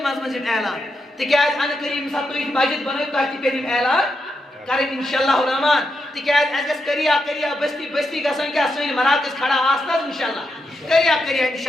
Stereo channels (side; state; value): both; normal; correlation 0.84